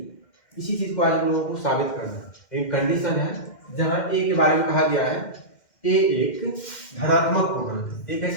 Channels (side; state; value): right; late; 2.1 ms